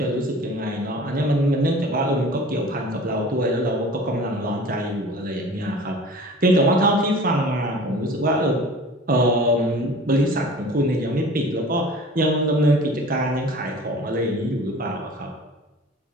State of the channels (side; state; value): both; normal; correlation 0.42